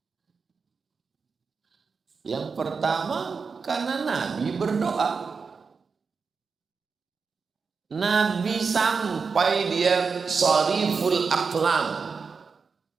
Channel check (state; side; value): quieter; left; 5.1 dB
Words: Yang pertama, karena Nabi berdoa. Nabi sampai dia shariful aqlam.